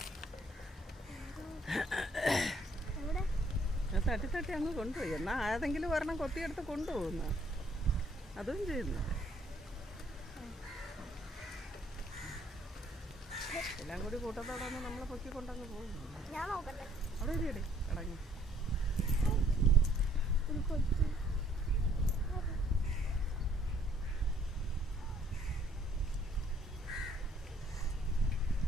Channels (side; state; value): both; normal; correlation 0.64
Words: തട്ടി തട്ടി അങ്ങ് കൊണ്ടുപോയി. എന്നാ ഏതെങ്കിലും ഒരെണ്ണം കൊത്തിയെടുത്ത് കൊണ്ടുപോകുന്ന അതും ചെയ്യുന്നു. എല്ലാം കൂടി കൂട്ടത്തോടൊന്ന് നമ്മളെ പൊക്കിക്കൊണ്ടങ്ങ് പോകുന്നു. അവിടെ ഇരിയടി അടങ്ങി.